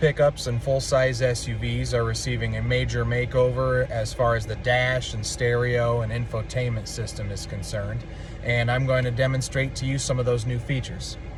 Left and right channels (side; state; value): both; identical; correlation 1.00